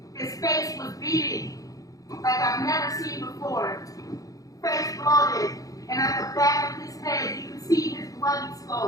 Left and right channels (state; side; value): late; right; 0.17 ms